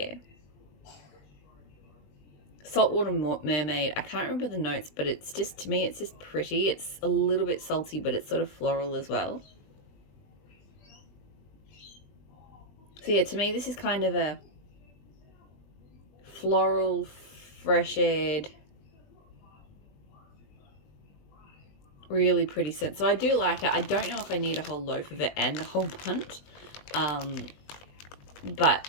Saltwater Mermaid, I can't remember the notes, but it's just, to me, it's just pretty. It's a little bit salty, but it's sort of floral as well. So yeah, to me, this is kind of a floral, fresh-aired, really pretty scent. So I do like it. I don't know if I need a whole loaf of it and a whole bunch, but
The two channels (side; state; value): right; late; 20 ms